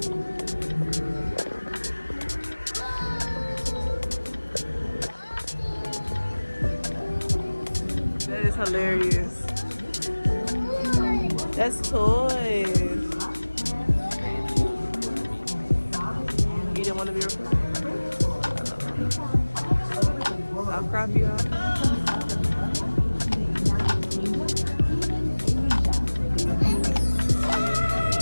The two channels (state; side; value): inverted; both; correlation -1.00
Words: That is hilarious. That's toys. You didn't want to be recorded? I'll crop you out.